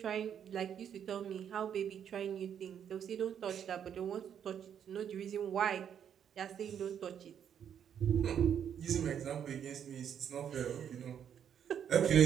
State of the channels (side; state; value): left; quieter; 8.7 dB